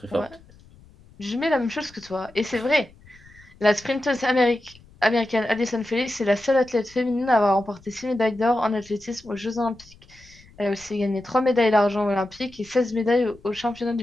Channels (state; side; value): noise; left; rumble, 25 dB below the sound